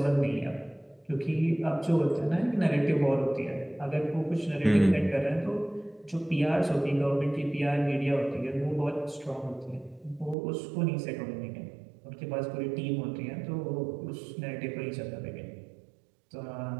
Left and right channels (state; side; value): drops out; left; at 10.4 s